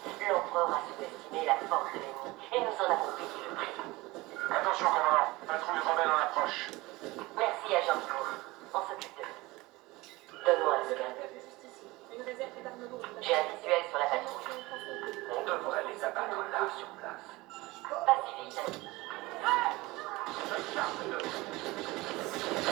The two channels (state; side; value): quieter; left; 21.1 dB